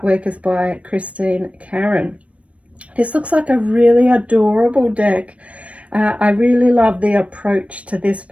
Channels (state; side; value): late; left; 0.064 ms